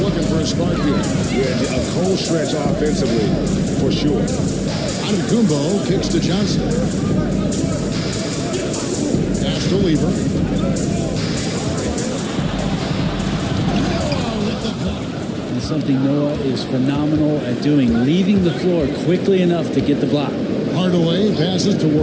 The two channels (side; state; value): both; identical; correlation 1.00